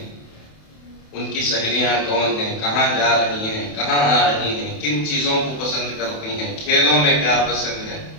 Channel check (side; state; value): right; late; 28 ms